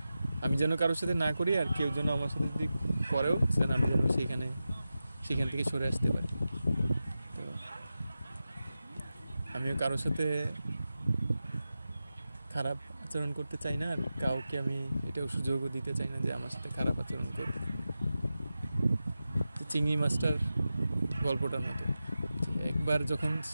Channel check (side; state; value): both; inverted; correlation -0.93